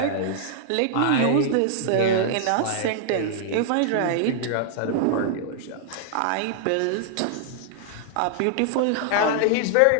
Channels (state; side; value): different; both; correlation -0.01